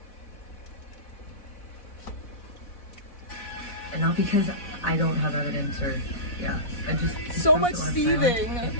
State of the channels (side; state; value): right; late; 4.1 ms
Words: And not because I don't have evidence or, yeah. I just So much wanna seething. Say, like, get